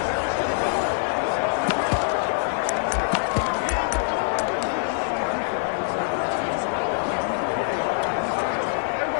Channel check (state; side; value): silent; right; 62 dB below the other